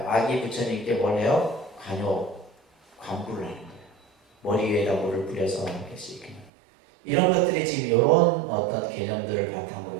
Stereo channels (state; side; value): drops out; left; at 6.5 s